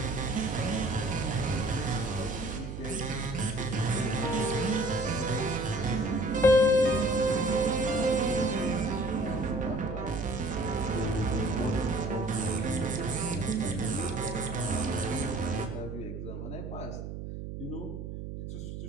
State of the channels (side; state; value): right; noise; hum, 7 dB below the sound